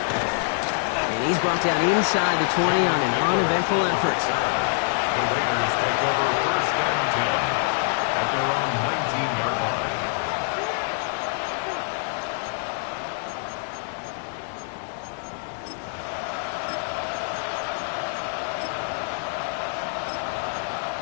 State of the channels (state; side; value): silent; right; 61 dB below the other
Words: And he's brought down inside the 20 on an uneventful effort. The Raiders take over 1st and 10 at their own 19-yard line.